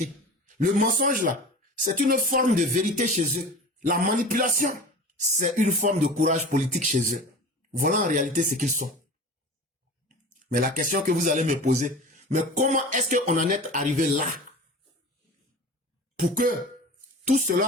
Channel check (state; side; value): normal; both; correlation 0.36